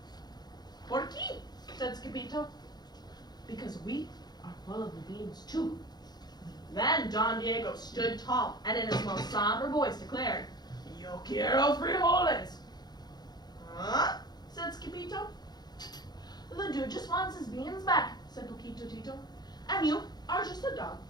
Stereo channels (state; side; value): late; right; 0.20 ms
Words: ¿Por qué? Said Skippito. Because we are full of the beans too. Then Don Diego stood tall and in his most somber voice declared, Yo quiero frijoles. Huh? Said Skippito. The dude just wants his beans back, said Poquito Tito. And you are just a dog